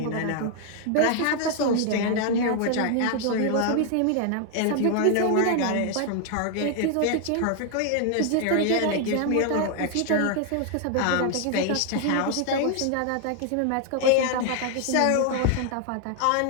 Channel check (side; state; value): both; different; correlation 0.00